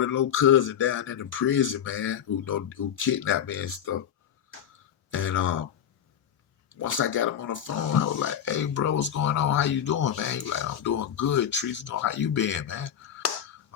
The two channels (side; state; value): right; quieter; 9.3 dB